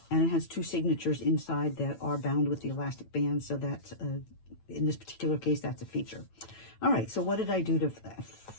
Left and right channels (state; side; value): late; right; 9.0 ms